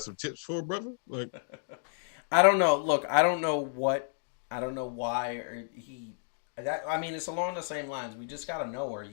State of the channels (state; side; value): silent; right; digital silence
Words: some tips for a brother? Like, I don't know. Look, I don't know why it's along the same lines. We just gotta know, are